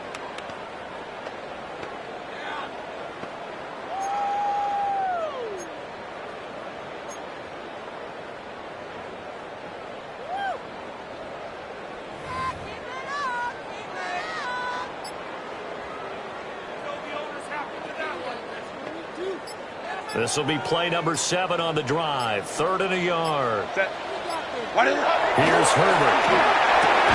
This will be play number 7 on the drive. 3rd and a yard. Set. Here's Herbert.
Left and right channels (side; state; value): both; identical; correlation 1.00